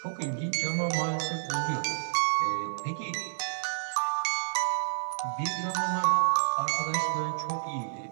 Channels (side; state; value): left; silent; 58 dB below the other